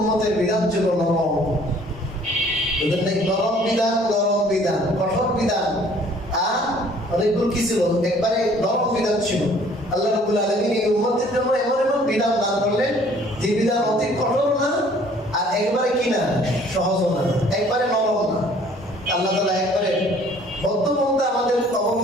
বিধান ছিল নরম। ওদের নাকি নরম বিধান, কঠোর বিধান, আর অনেকগুলো কি ছিল, একবারে নরম বিধান ছিল। আল্লাহ রাব্বুল আলামিন এই উম্মতের জন্য এমন এমন বিধান দান করলেন যে বিধান অতি কঠোর না, আর একবারে কি না, সহজ না, একবারে নরম না। আল্লাহ তাআলা একবারে মধ্যপন্থা আমাদের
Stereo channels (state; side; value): normal; both; correlation 0.56